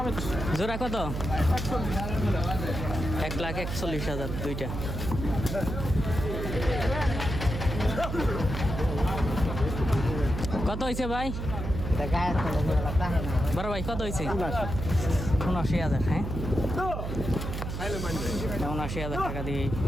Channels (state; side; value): noise; right; hum, 5 dB below the sound